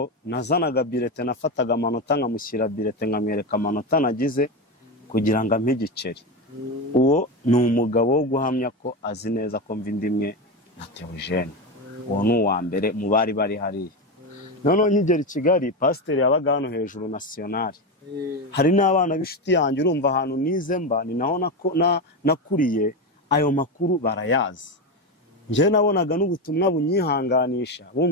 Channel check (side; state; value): both; normal; correlation 0.15